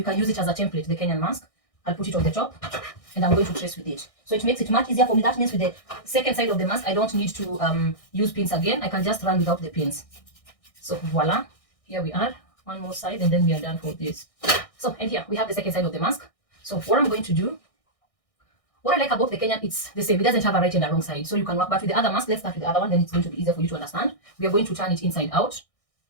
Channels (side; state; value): right; late; 1.6 ms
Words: can use it as a template, the Kenyan mask. I'll put it on the top and I'm going to trace with it. So it makes it much easier for me. That means with the second side of the mask, I don't need to use pins again. I can just run without the pins. So voila, here we are. One more side and then we are done for this. So, and here we have the second side of the mask. So what I'm going to do, what I like about the Kenyan, it's the same. It doesn't have a right and a wrong side. So you can work back with the other mask. Let's start with the other one. Then it's going to be easier for you to understand. We are going to turn it inside out.